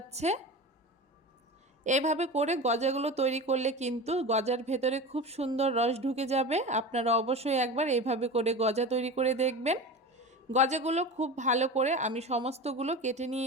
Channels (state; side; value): normal; both; correlation 0.29